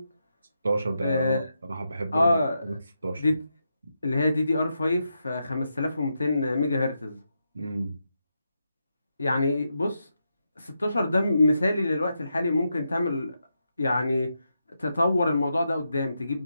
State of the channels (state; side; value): inverted; both; correlation -0.85